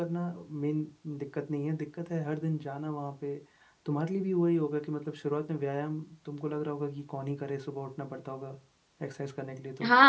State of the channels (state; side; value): identical; both; correlation 1.00